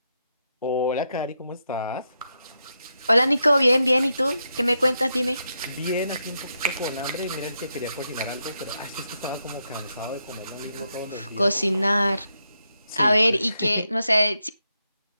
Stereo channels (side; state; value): both; inverted; correlation -0.83